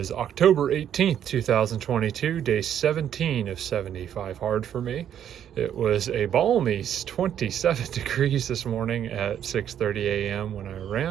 October 18th, 2022, day 17 of 75 hard for me. It was a balmy 27 degrees this morning at 6:30 a.m. when I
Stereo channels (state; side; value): quieter; left; 9.8 dB